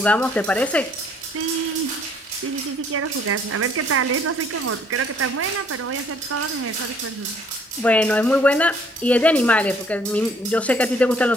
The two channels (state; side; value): normal; both; correlation 0.62